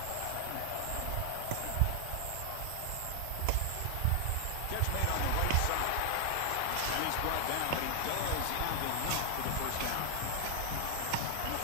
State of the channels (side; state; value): both; different; correlation 0.00